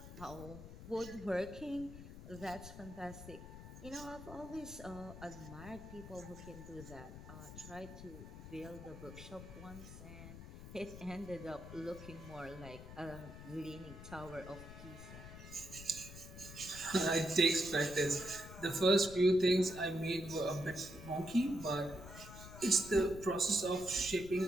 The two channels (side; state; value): left; noise; rumble, 13 dB below the sound